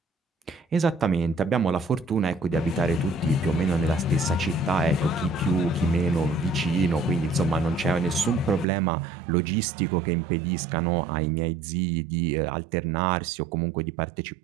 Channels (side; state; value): left; drops out; at 8.7 s